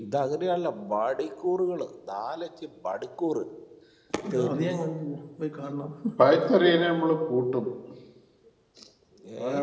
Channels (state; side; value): identical; both; correlation 1.00